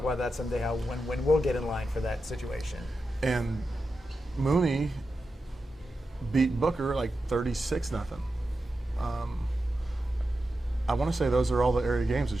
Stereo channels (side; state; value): both; normal; correlation 0.90